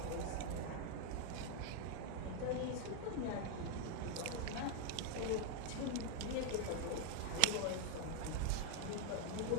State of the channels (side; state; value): both; different; correlation 0.00